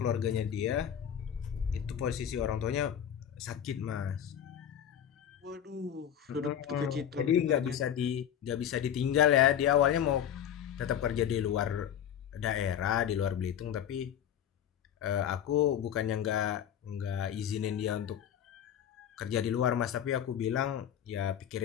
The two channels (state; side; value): quieter; right; 9.6 dB